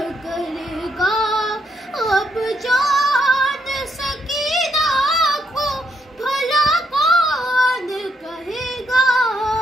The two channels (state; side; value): normal; both; correlation 0.76